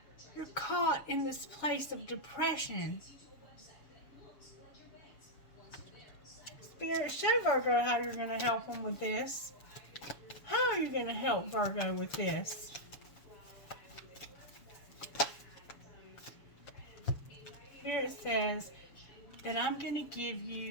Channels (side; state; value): right; late; 7.0 ms